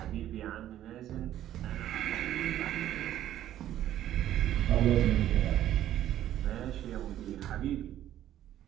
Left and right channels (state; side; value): quieter; left; 12.2 dB